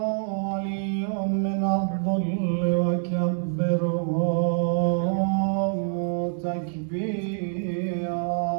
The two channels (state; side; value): silent; left; 61 dB below the other